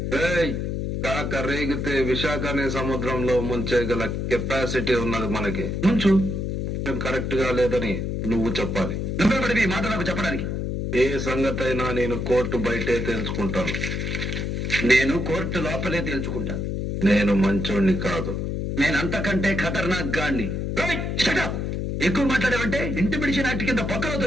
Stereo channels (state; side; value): noise; left; hum, 2 dB below the sound